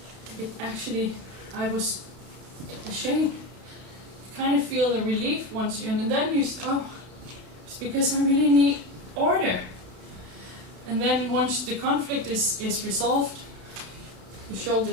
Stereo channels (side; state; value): left; late; 31 ms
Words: it actually, I was ashamed. You kind of feel a relief once you, and then you, oh, it's because I really need order. And then once the conflict is resolved, the